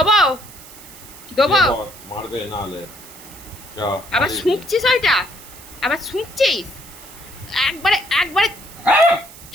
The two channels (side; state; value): right; noise; hiss, 18 dB below the sound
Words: দেবো। শুয়ে পড়, মারবে নাহলে চ, আবার মারিস নে। শুঁকছিস ওইটা? আবার শুঁকছিস? একবারে একবারে